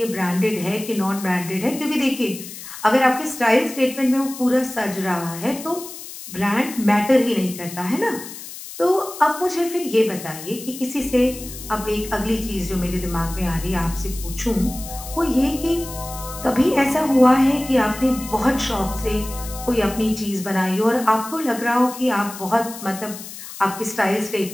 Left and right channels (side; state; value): left; noise; hiss, 12 dB below the sound